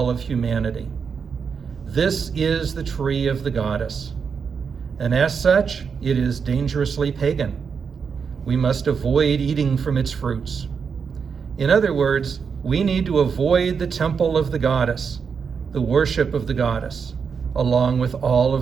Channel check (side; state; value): left; quieter; 6.1 dB